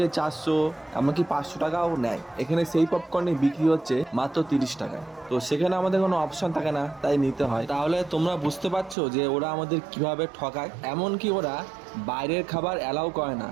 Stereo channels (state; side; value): drops out; left; at 9.0 s